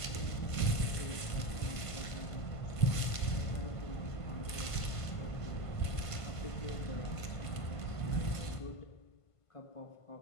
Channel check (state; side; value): late; right; 1.5 ms